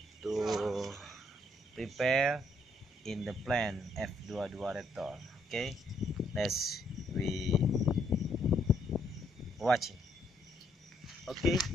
to prepare in the plan F22 Raptor. Okay, let's we watching. Okay,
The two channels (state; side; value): normal; both; correlation 0.71